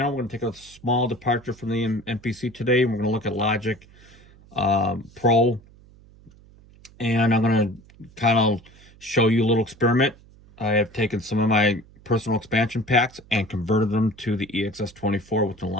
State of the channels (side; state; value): right; noise; hum, 25 dB below the sound